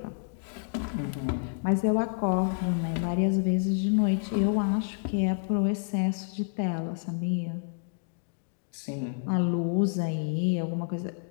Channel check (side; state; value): right; silent; digital silence